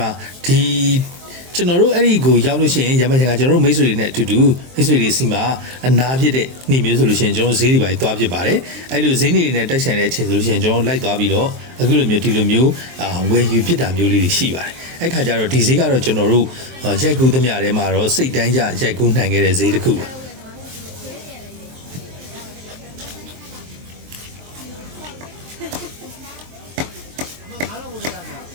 ှာဒီကျွန်တော်တို့အဲ့ဒီကိုရောက်လို့ရှိရင်ရမချင်ကကျွန်တော်တို့မိတ်ဆွေတွေနဲ့အတူတူမိတ်ဆွေတွေစီမှာအနာဖြစ်တဲ့နှီးမျိုးဆိုလို့ရှိရင်ကျွန်တော်ဈေးတွေပါသွားဖြစ်ပါတယ်အဲ့လိုဈေးနေတွေနဲ့တိုက်ဆိုင်တဲ့အချိန်ဆိုလို့ရှိရင်ကျွန်တော်လိုက်သွားပြီးတော့အခုလိုမျိုးဒီလိုမျိုးဝယ်ယူဖြစ်တာမျိုးလေးတွေရှိပါတယ်အဲ့ခါကျတော့ဒီဈေးကတော့ကျွန်တော်တို့ရိုက်ကူးသမျှထဲမှာတော့စိတ်တိုင်းကြရိုက်ကူးနိုင်ခဲ့တဲ့ဈေးတစ်ခုပါ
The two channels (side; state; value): left; late; 23 ms